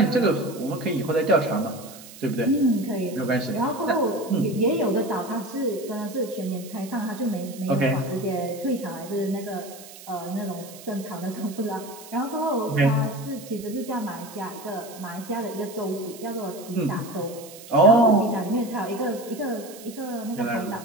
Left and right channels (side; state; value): right; noise; hiss, 17 dB below the sound